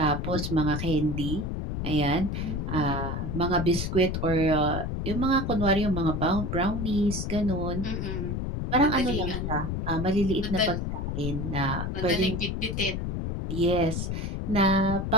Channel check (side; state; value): left; noise; rumble, 2 dB below the sound